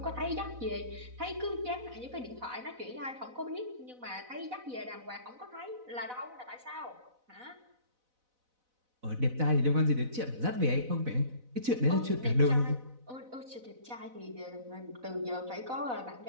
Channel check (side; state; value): left; late; 4.0 ms